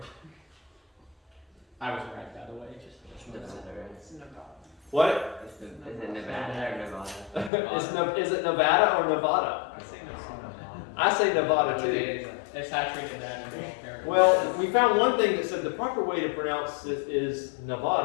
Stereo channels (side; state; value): right; drops out; at 7.5 s